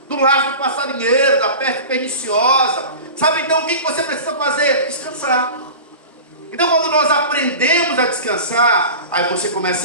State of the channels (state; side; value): inverted; both; correlation -0.34